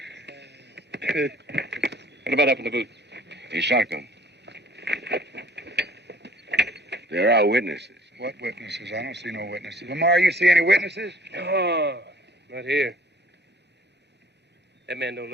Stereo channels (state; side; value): normal; both; correlation 0.54